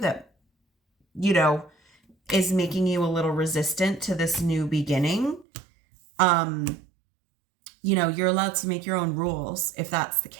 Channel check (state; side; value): drops out; left; at 5.5 s